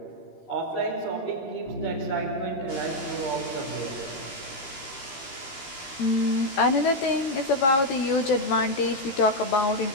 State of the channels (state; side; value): late; right; 14 ms